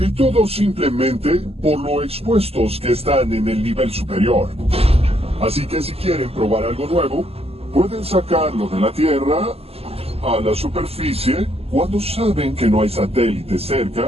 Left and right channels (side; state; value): left; late; 0.29 ms